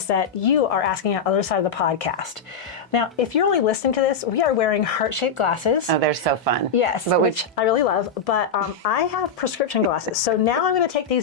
that you are asking on the other side of the podcast. Now, if you're only listening to this, we are wearing heart-shaped glasses. Oh, they're so fun. Yes, which I really love, but I have prescription glasses. So now I'm going to take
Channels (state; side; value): quieter; right; 5.1 dB